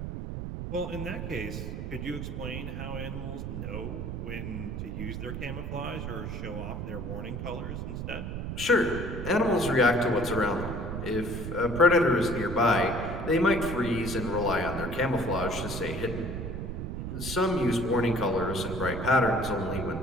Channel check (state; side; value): noise; right; rumble, 5 dB below the sound